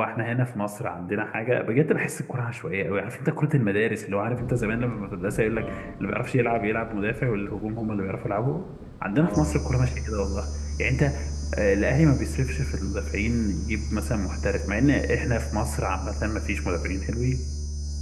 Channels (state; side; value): identical; both; correlation 1.00